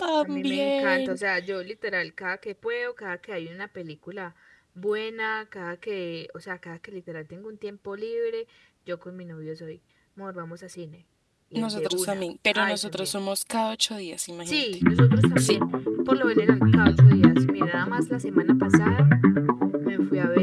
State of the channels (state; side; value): identical; both; correlation 1.00